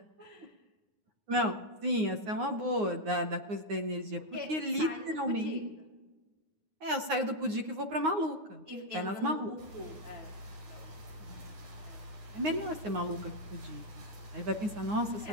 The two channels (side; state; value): left; late; 9.6 ms